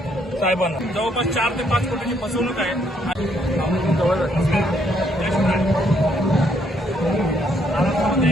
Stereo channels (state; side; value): normal; both; correlation 0.70